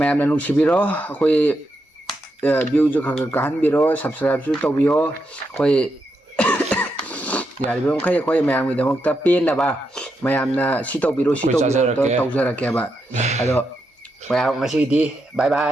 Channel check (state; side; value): normal; both; correlation 0.84